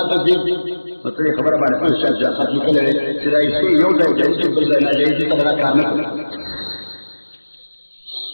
تذیب مطلب خبر باندې په شان ځکه چې کله چې راځي یو ځای چې بل ځای نه ځي دا کار نه کوي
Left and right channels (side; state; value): both; inverted; correlation -1.00